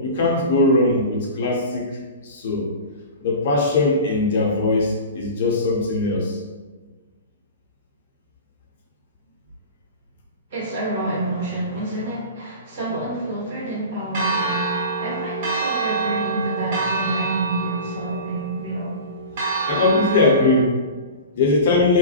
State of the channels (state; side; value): inverted; both; correlation -0.33